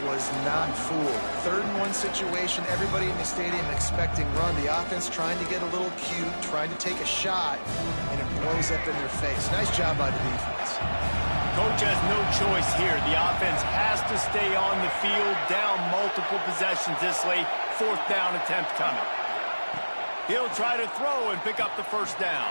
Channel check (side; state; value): both; inverted; correlation -1.00